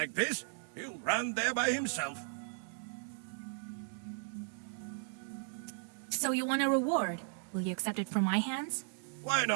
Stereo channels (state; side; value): silent; left; digital silence